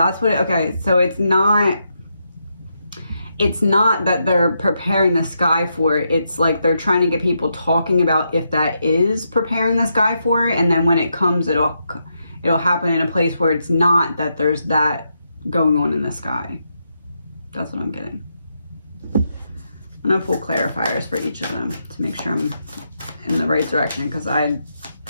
what, okay, so it's not that they're preparing the sky for it. It's like they're trying to get people talking about if that is preparing the sky for it. And then when it comes, it'll happen in a place where it's not that there's that going on in the sky. That's what I'm getting. I'm going to pull clarifiers for each of them to make sure I'm in the right direction, because I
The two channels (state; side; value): inverted; both; correlation -0.82